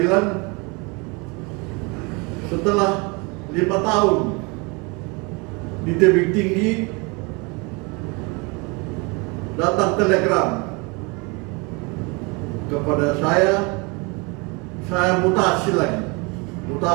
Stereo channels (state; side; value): quieter; left; 29.2 dB